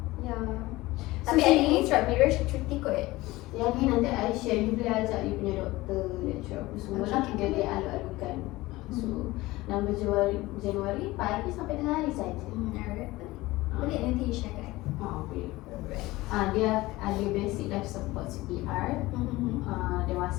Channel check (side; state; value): right; quieter; 19.3 dB